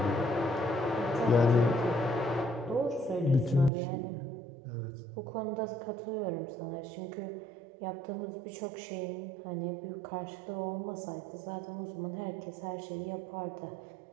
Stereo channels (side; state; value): left; drops out; at 3.7 s